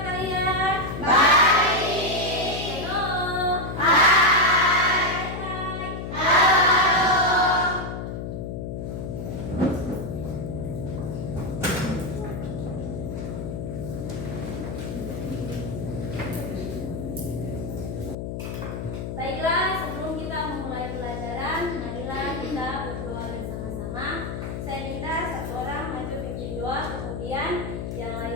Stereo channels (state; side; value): noise; left; hum, 5 dB below the sound